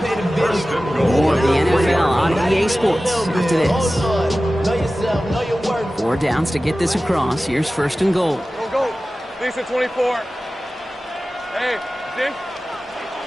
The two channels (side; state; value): both; normal; correlation 0.96